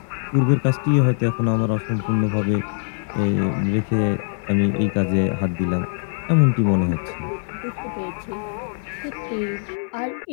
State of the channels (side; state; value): right; silent; digital silence